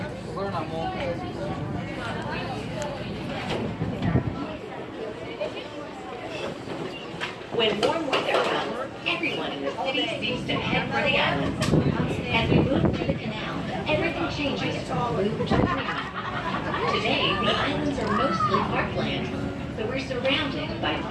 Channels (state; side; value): identical; both; correlation 1.00